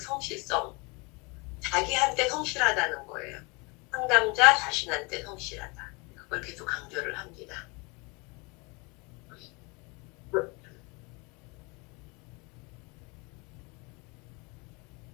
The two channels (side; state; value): right; quieter; 28.7 dB